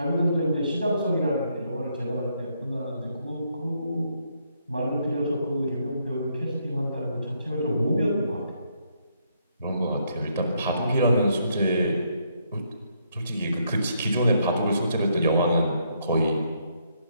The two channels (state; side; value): inverted; both; correlation -0.74